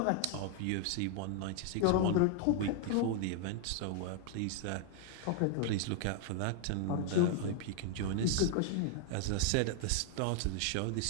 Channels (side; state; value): both; different; correlation 0.00